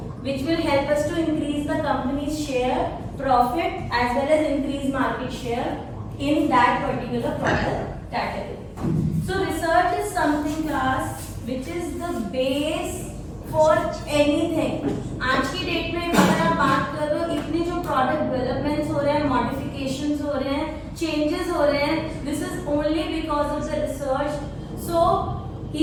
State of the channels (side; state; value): both; identical; correlation 1.00